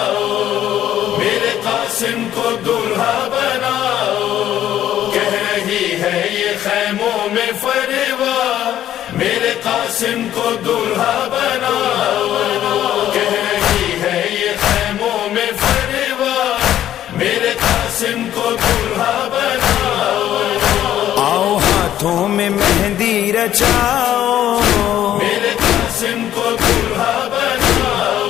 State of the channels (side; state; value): right; quieter; 11.7 dB